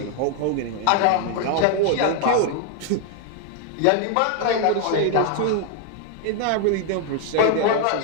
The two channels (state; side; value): different; both; correlation 0.00